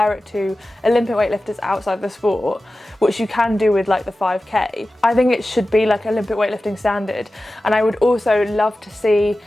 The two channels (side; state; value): both; normal; correlation 0.95